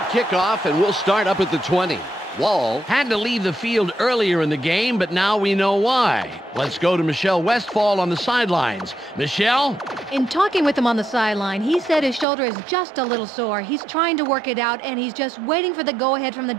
kickoff, and we'll start up at the 20. Wall had to leave the field earlier in the game, but now we know why. Let's go to Michelle Westfall on the sidelines. Michelle? In talking with him on the sideline, he said his shoulder is just a little sore. He's trying to work it out, and he's just waiting for the go-ahead from the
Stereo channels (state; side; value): drops out; left; at 12.2 s